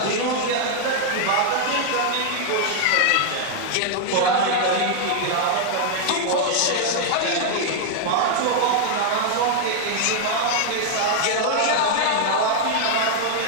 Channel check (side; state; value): both; different; correlation 0.00